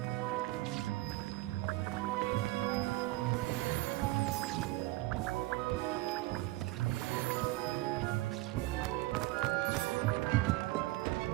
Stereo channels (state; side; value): quieter; left; 18.9 dB